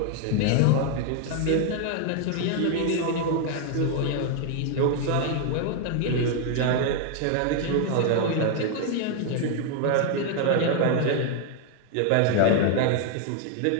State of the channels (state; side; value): different; both; correlation 0.00